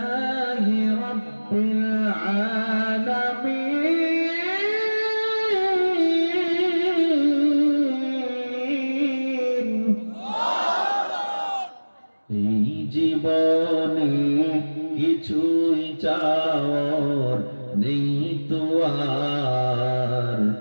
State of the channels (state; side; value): inverted; both; correlation -1.00